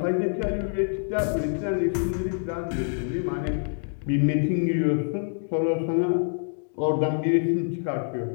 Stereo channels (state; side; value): silent; right; 61 dB below the other